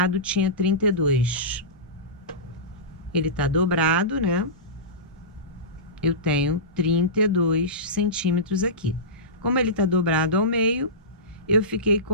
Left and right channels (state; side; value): normal; both; correlation -0.20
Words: tinha 32. Ele tá dobrado, né? Eu tenho 32 centímetros aqui. Como ele tá dobrado ao meio, eu fiquei